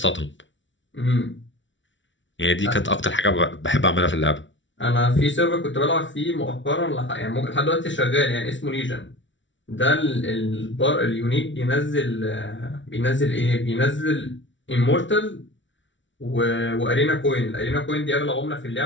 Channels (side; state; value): right; late; 0.55 ms